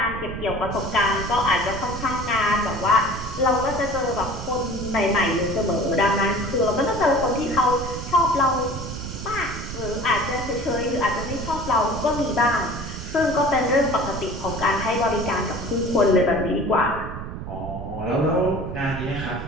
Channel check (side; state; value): right; noise; rumble, 8 dB below the sound